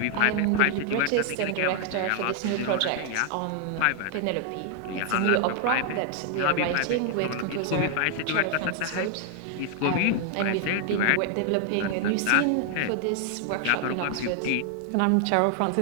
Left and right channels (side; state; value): both; different; correlation 0.00